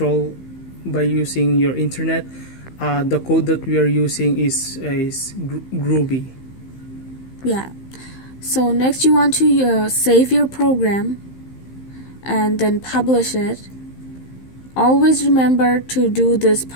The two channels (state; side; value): late; right; 15 ms